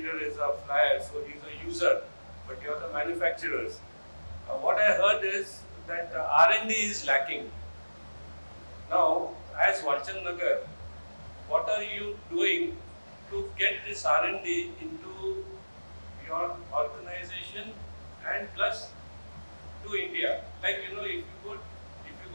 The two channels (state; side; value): inverted; both; correlation -1.00